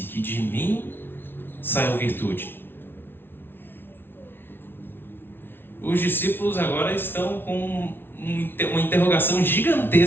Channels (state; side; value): late; right; 0.11 ms